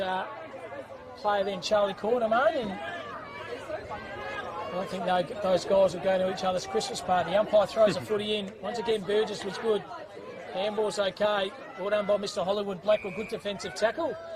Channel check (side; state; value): both; identical; correlation 1.00